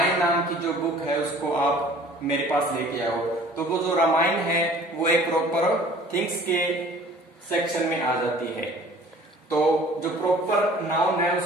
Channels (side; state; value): both; normal; correlation 0.50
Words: नाम की जो बुक है उसको आप मेरे पास लेके आओ, तो वो जो रामायण है वो एक प्रॉपर थिंग्स के सेक्शन में आ जाती है। तो जो प्रॉपर नाउन है